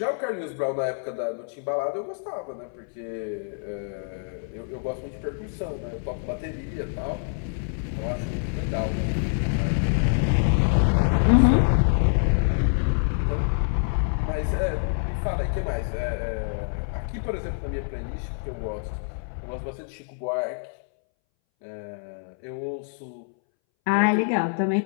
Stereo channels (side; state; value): right; silent; 61 dB below the other